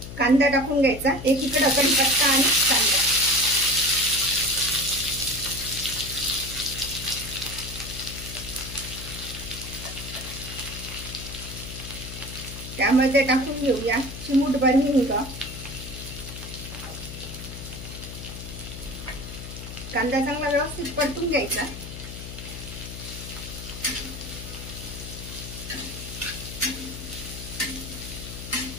कांदा टाकून घ्यायचा. एकीकडे कढीपत्ता आणि कांदा. त्यामध्ये टाकून घेऊया चिमूटभर हिंग. कांदा चांगला व्यवस्थित परतून घ्यायचा.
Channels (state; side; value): noise; left; hum, 10 dB below the sound